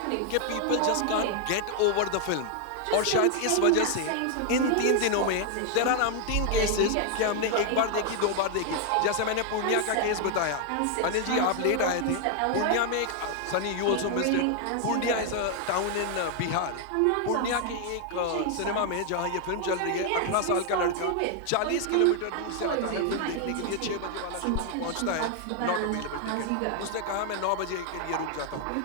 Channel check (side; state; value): both; different; correlation 0.00